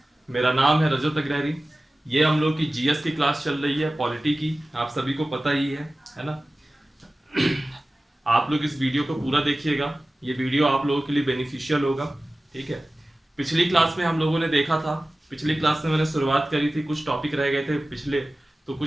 मेरा नाम है रजत अग्रहरी। ये हम लोग की जीएस की क्लास चल रही है, पॉलिटी की। आप सभी को पता ही है ना। आप लोग इस वीडियो को पूरा देखिएगा। ये वीडियो आप लोगों के लिए बेनिफिशियल होगा। ठीक है। पिछली क्लास में हम लोगों ने देखा था, पिछली क्लास में मैंने शुरुआत करी थी, कुछ टॉपिक रह गए थे पिछले। तो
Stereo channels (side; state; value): both; normal; correlation 0.96